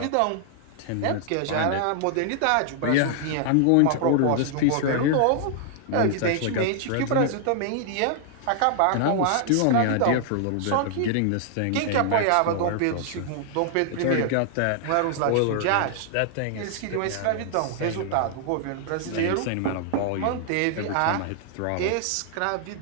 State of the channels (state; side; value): different; both; correlation 0.00